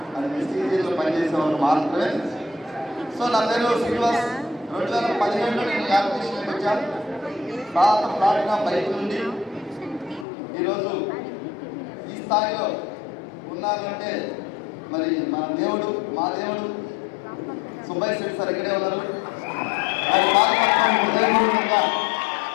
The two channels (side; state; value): right; drops out; at 10.2 s